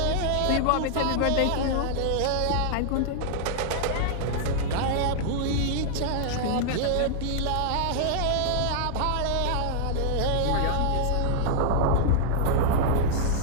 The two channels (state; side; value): different; both; correlation -0.01